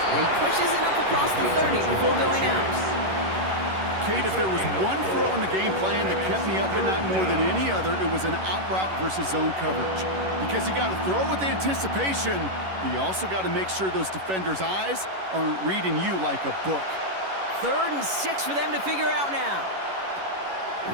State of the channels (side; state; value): left; late; 11 ms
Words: he pushes it up across the 30 before going out. Kate, if there was one throw in the game plan that kept me up at night more than any other, it was an out route versus zone coverage. Because you got to throw with anticipation, but you also got to make sure those defenders' eyes aren't reading you like a book. 3rd and 6 for them to figure out now.